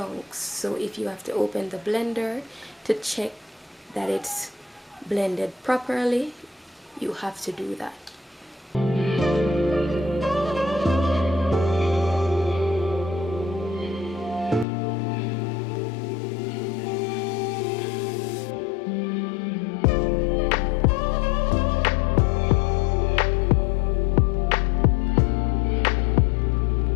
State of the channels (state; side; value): drops out; right; at 14.7 s